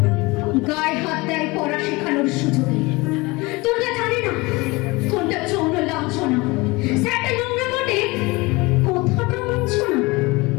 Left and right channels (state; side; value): quieter; right; 23.6 dB